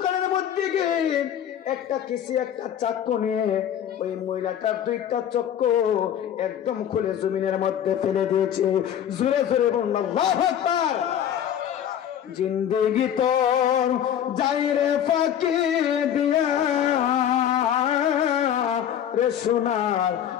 মধ্যে গিয়ে একটা চাকু নিয়ে ওই মহিলাটার দুইটা চক্ষু একদম খুলে জমিনের মধ্যে ফেলে দিয়েছে। জোরে জোরে বলুন আল্লাহু আকবার। জিন্দেগি তোর যাই রে ফাঁকি দিয়া রে সোনার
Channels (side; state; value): right; quieter; 9.8 dB